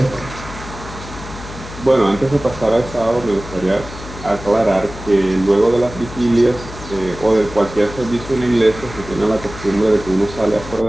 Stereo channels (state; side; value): noise; left; hum, 13 dB below the sound